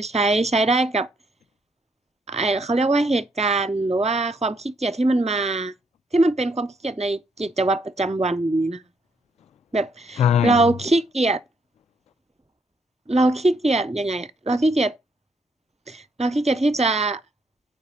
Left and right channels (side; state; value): both; normal; correlation 0.73